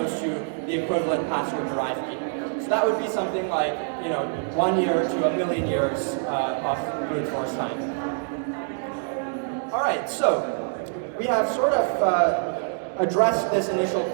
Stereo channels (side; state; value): left; silent; 61 dB below the other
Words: to the equivalent password-derived key. So that would be something like, 1 year to a million years of brute force time. All right, so we have sort of addressed this initial